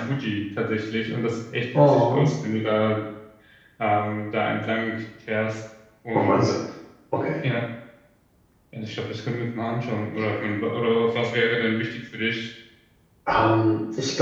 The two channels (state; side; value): identical; both; correlation 1.00